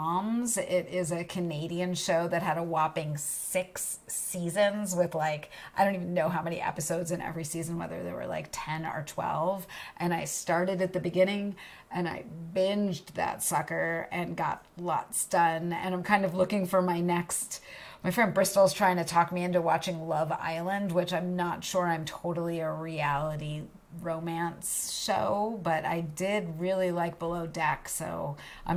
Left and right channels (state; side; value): identical; both; correlation 1.00